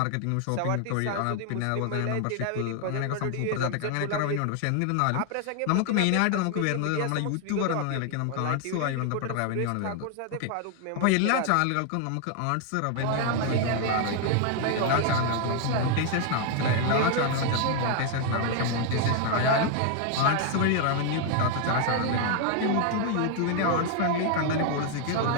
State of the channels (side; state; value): both; different; correlation 0.00